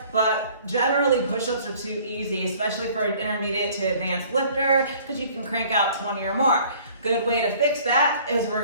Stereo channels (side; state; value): both; inverted; correlation -0.54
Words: but generally push-ups are too easy, especially for an intermediate to advanced lifter, because you can crank out 20 or more. Good way to fix that is we're